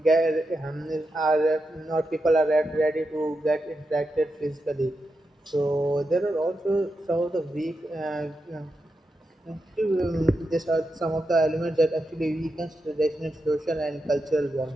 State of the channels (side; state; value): both; normal; correlation 0.87